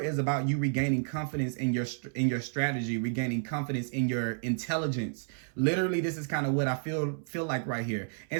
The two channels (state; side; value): silent; left; 57 dB below the other